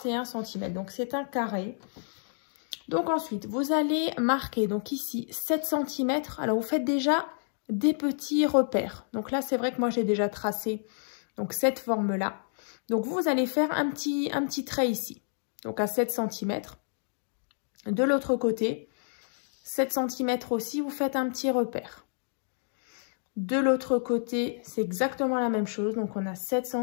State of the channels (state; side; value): silent; right; digital silence